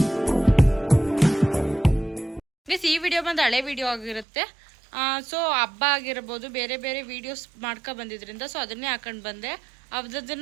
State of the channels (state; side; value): drops out; left; at 4.2 s